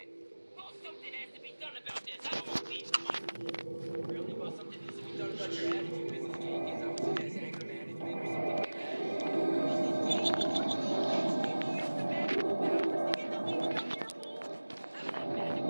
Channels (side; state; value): both; inverted; correlation -1.00